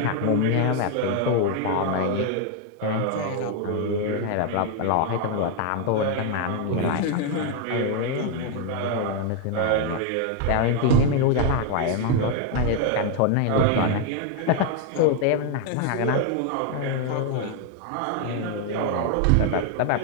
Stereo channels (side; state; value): both; different; correlation 0.01